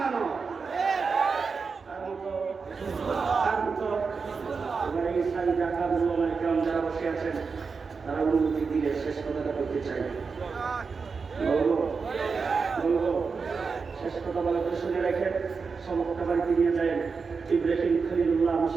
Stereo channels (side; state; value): left; quieter; 5.0 dB